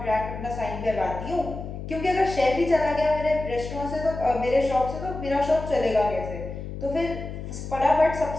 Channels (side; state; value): left; noise; hum, 8 dB below the sound